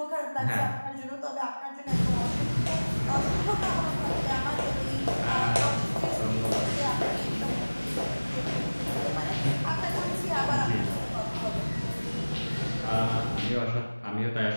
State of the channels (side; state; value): both; inverted; correlation -1.00